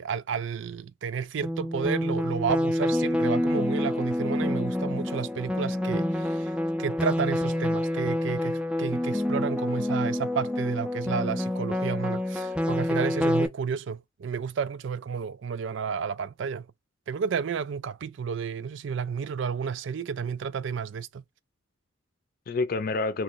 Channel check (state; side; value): normal; both; correlation 0.57